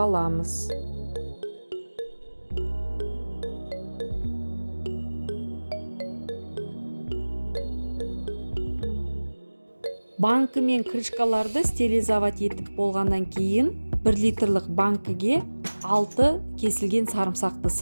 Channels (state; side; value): inverted; both; correlation -1.00